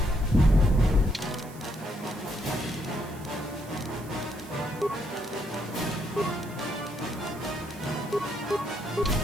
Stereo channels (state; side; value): noise; right; hiss, 20 dB below the sound